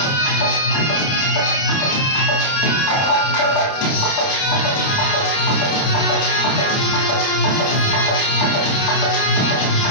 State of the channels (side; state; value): right; late; 30 ms